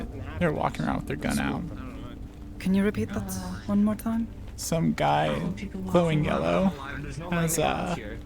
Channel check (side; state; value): both; identical; correlation 1.00